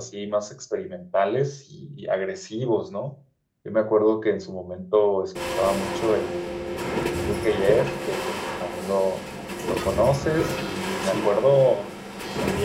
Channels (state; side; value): identical; both; correlation 1.00